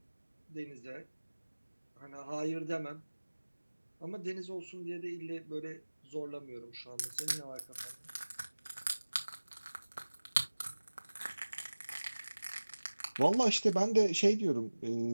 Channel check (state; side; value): inverted; both; correlation -1.00